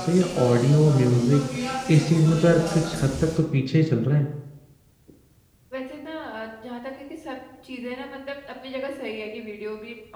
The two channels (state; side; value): identical; both; correlation 1.00